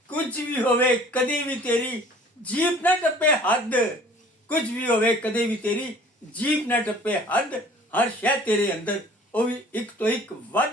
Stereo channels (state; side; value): normal; both; correlation 0.50